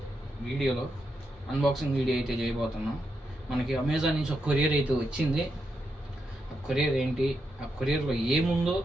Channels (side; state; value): both; normal; correlation 0.84